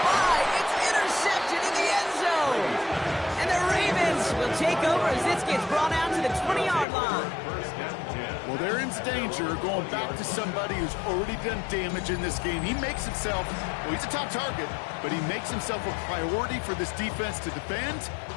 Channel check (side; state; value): right; drops out; at 6.9 s